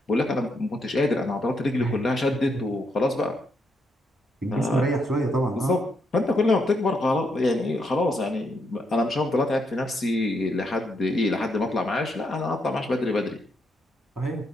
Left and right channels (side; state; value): both; normal; correlation 0.78